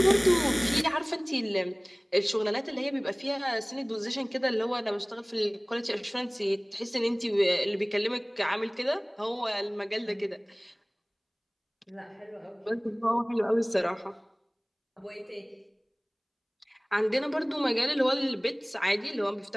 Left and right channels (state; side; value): identical; both; correlation 1.00